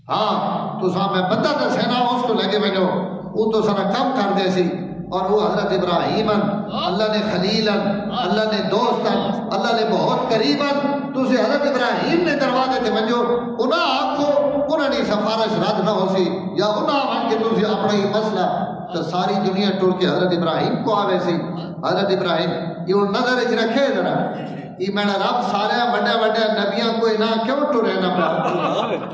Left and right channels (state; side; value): identical; both; correlation 1.00